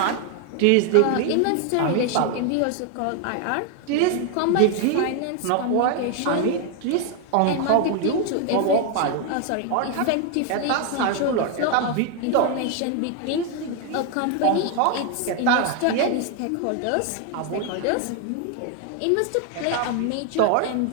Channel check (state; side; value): different; both; correlation 0.01